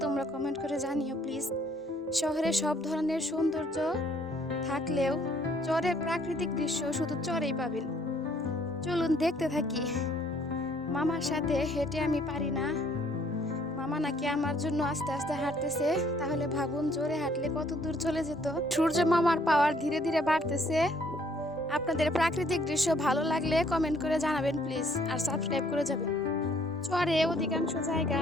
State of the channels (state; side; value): normal; both; correlation 0.63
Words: তোমরা কমেন্ট করে জানিও প্লিজ। শহরে সব ধরনের সৌন্দর্য থাকলেও চরের প্রাকৃতিক দৃশ্য শুধু চরেই পাবেন। চলুন দেখতে থাকি। মামার সাথে হেঁটে আমি পারি না, মামা নাকি আমার জন্য আস্তে আস্তে হাঁটতেছে। তাহলে ভাবুন জোরে হাঁটলে কত দূর চলে যেত। সূর্য মামার পাওয়ার ধীরে ধীরে বাড়তেছে। আপনাদের প্রাকৃতিক দৃশ্য ভালো লাগলে কমেন্ট করে জানাবেন প্লিজ, আর সাবস্ক্রাইব করে যাবেন। চরে অধিকাংশ